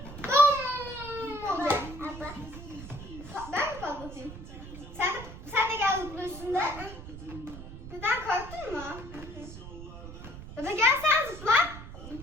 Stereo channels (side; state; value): right; noise; rumble, 12 dB below the sound